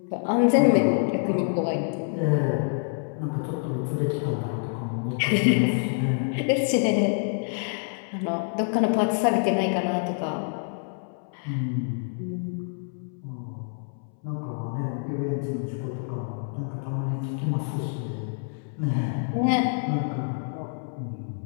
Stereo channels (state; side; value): silent; right; 60 dB below the other